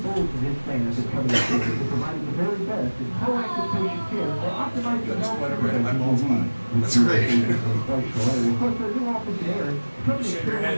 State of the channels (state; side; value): inverted; both; correlation -1.00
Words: That's great. Shake your